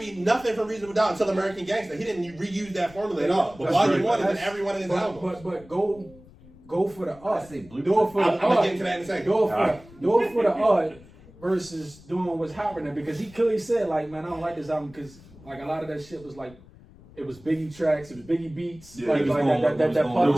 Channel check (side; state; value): left; noise; rumble, 23 dB below the sound